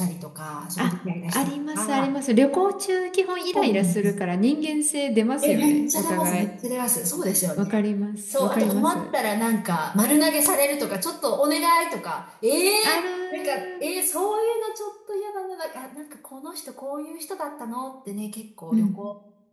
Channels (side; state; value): both; identical; correlation 1.00